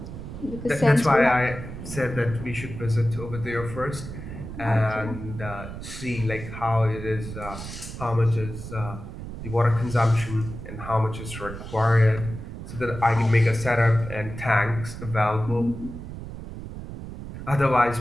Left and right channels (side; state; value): right; noise; rumble, 10 dB below the sound